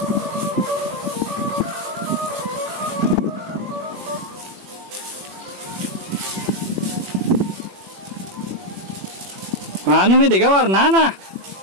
Manu mi tiga warna na.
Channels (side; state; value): left; late; 21 ms